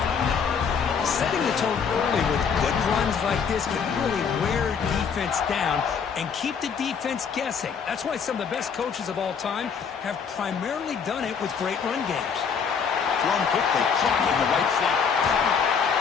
Setting the tone early with good runs like this can really wear defense down and keep the defense guessing. That's why some of the best coaches of all time have primarily done it with great run games. Thrown quickly, caught in the right slot.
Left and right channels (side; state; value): right; quieter; 6.4 dB